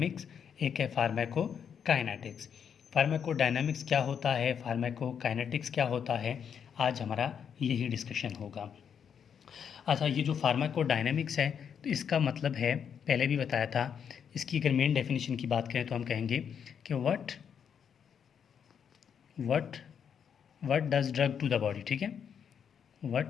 एक है फार्माकोकाइनेटिक्स। फार्माकोडायनामिक्स क्या होता है, फार्माकोकाइनेटिक्स क्या होता है, आज हमारा यही डिस्कशन होगा। अच्छा, ये जो फार्माकोडायनामिक्स है तो इसका मतलब है, पहले भी बताया था, इसकी अगर मेन डेफिनेशन की बात करें तो हम कहेंगे कि what what what does drug to the body. ठीक है,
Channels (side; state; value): right; quieter; 7.6 dB